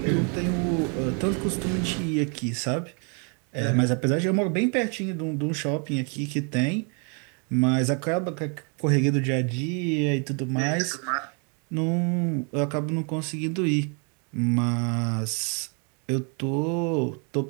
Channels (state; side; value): quieter; left; 37.3 dB